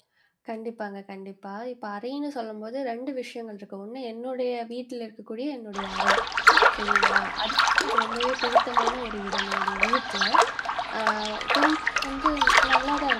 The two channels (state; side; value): identical; both; correlation 1.00